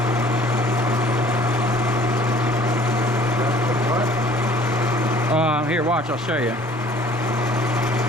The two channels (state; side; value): normal; both; correlation 0.53